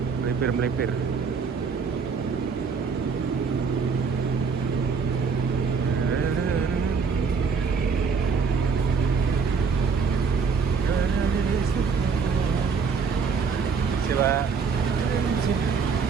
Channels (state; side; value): quieter; left; 5.4 dB